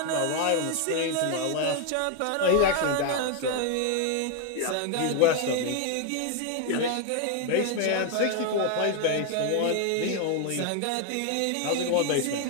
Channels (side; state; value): both; different; correlation 0.01